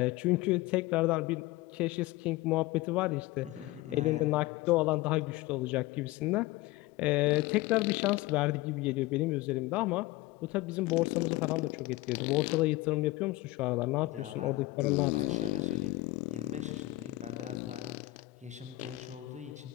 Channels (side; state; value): right; quieter; 19.6 dB